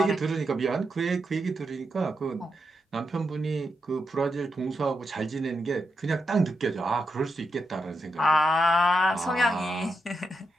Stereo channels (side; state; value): both; normal; correlation 0.85